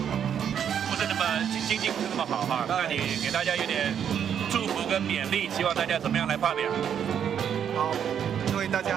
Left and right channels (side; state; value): left; quieter; 8.6 dB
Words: 是那么经济不是那么好哈，那你给大家有点祝福跟勉励，希望大家怎么样来发表？好，各位大